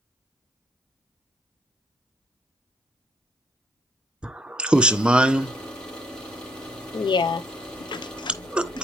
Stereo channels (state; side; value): normal; both; correlation 0.69